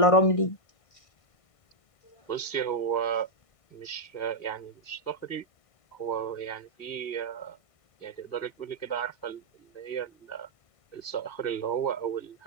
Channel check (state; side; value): late; right; 1.5 ms